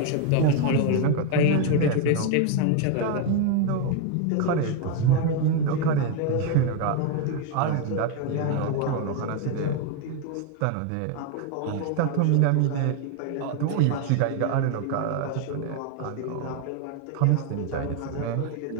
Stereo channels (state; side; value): different; both; correlation 0.01